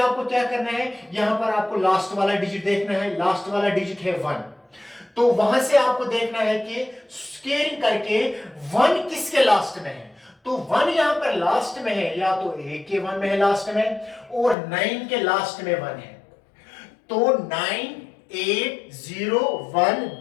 क्या करना है, यहां पर आपको लास्ट वाला डिजिट देखना है, लास्ट वाला डिजिट है 1, तो वहां से आपको देखना है कि स्क्वायरिंग करके 1 किसके लास्ट में है। तो 1 यहां पर लास्ट में है, या तो ए के 1 में है लास्ट में और 9 के लास्ट में 1 है। तो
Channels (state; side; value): drops out; right; at 14.6 s